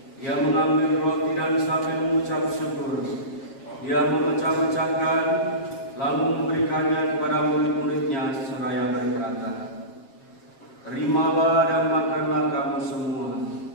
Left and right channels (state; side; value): late; right; 7.4 ms